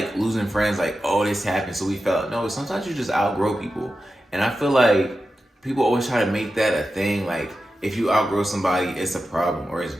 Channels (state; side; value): normal; both; correlation 0.91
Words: losing friends, like, oh, this happened, so we felt. No, sometimes you just outgrow people. And I feel like people always try to make that a thing. Like, if you outgrow somebody, it's a problem or it's